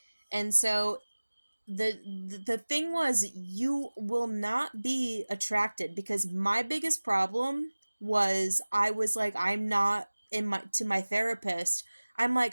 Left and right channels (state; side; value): inverted; both; correlation -1.00